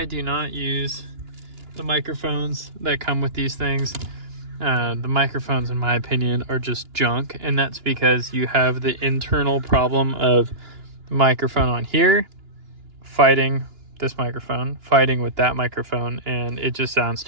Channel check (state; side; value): late; left; 2.9 ms